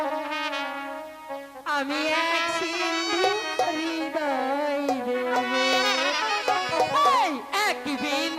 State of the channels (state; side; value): identical; both; correlation 1.00